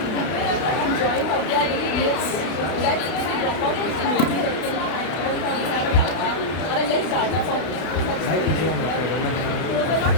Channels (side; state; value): right; late; 32 ms